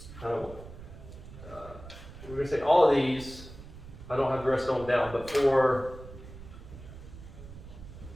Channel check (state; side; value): noise; right; rumble, 15 dB below the sound